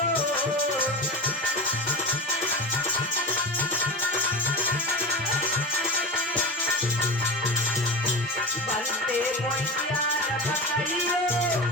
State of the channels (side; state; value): both; normal; correlation 0.27